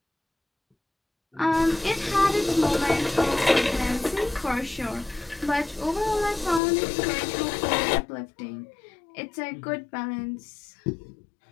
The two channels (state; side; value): drops out; right; at 6.6 s